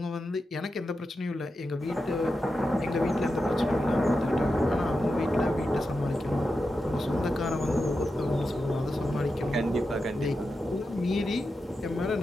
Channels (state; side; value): normal; both; correlation 0.89